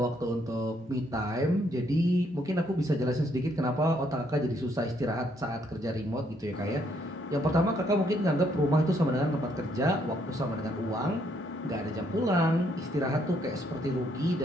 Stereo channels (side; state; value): both; normal; correlation 0.71